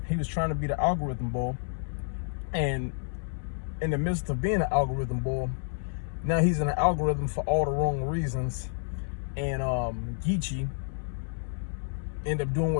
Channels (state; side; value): silent; right; 58 dB below the other